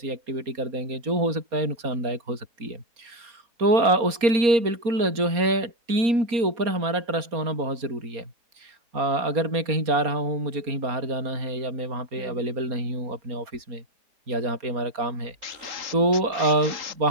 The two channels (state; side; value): late; left; 4.3 ms